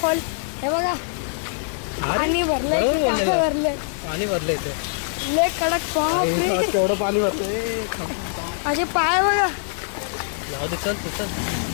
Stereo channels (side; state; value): right; silent; 58 dB below the other